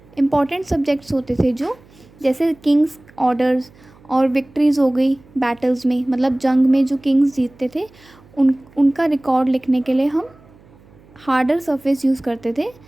इम्पॉर्टेंट सब्जेक्ट्स होते थे, जो जैसे किंग्स ऑर्डर्स और विक्ट्रीज़ हो गई बैटल्स में, मतलब जंग में जो किंग्स जीतते थे उनका रिकॉर्ड लिखने के लिए हम हार्डर सरफेस यूज़ करते थे,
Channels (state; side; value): noise; right; hum, 27 dB below the sound